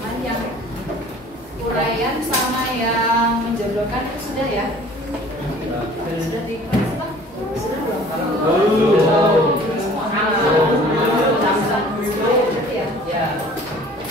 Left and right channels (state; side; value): normal; both; correlation 0.49